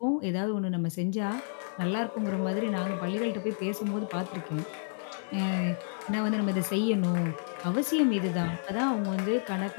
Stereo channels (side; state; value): right; silent; digital silence